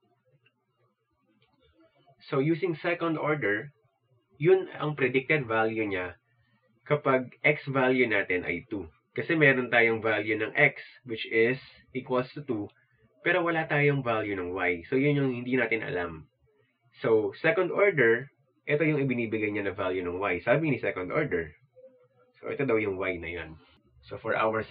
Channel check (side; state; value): both; identical; correlation 1.00